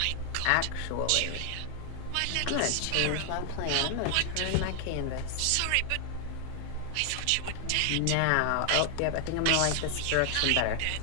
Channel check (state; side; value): different; both; correlation 0.00